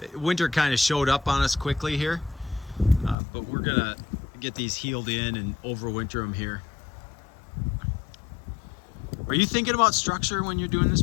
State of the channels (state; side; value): drops out; right; at 3.2 s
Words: Winter kind of showed up on us quickly here, but we're gonna get these healed in and overwinter them here. Are you thinking about structure when you're doing this